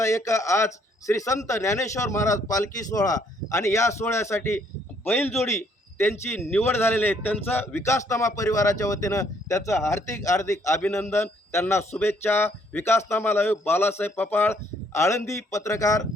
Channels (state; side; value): normal; both; correlation 0.66